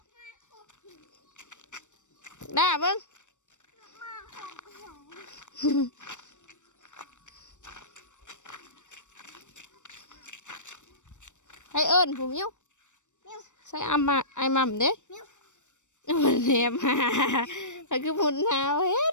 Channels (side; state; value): right; late; 0.85 ms